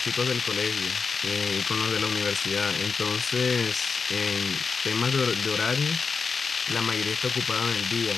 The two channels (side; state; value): right; quieter; 5.1 dB